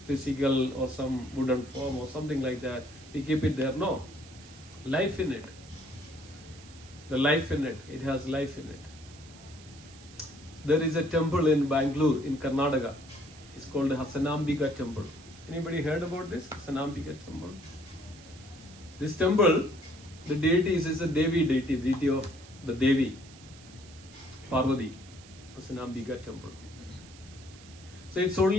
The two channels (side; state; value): right; noise; hiss, 21 dB below the sound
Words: physical or some wooden form or something like that. We keep it there. No. Life in it. The life in it. It has life in it. There is a temple in Bangalore, in Karnataka. It's called the Hasanambika temple. Anybody heard about this? Hasanambika temple. This temple, the deity is a Devi deity, deity of the Devi, Parvati, Hasanambika temple. So it's